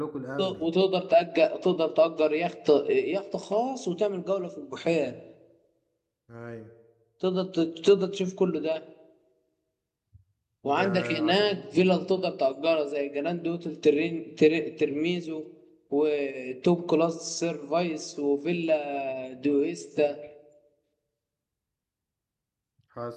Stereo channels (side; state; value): both; identical; correlation 1.00